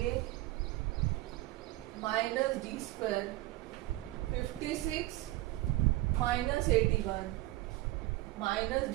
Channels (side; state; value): left; quieter; 18.0 dB